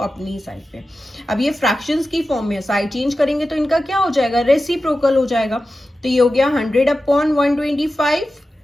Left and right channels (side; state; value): both; normal; correlation 0.93